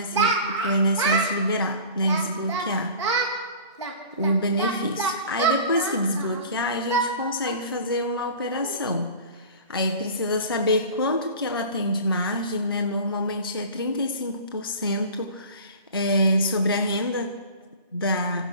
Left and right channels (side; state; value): both; inverted; correlation -0.40